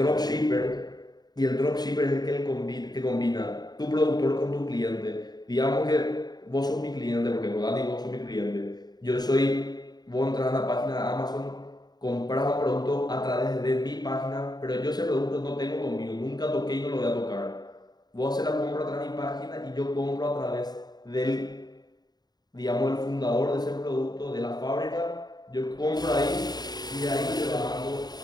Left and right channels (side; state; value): right; late; 0.20 ms